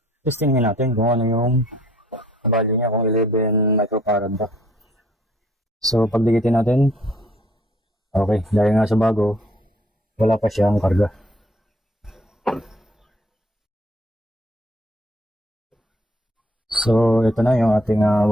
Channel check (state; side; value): normal; both; correlation 0.61